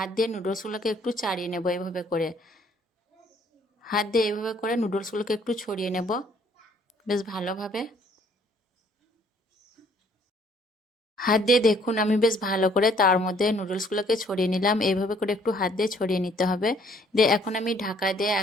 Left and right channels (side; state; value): both; normal; correlation 0.61